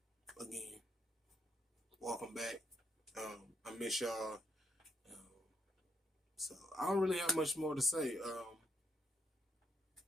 Again, welcome back. I miss y'all. So I don't really have much more to say.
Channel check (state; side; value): normal; both; correlation 0.76